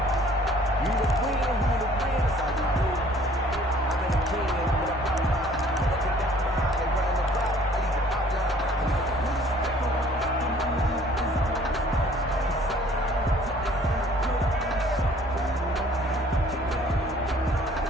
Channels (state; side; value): normal; both; correlation 0.55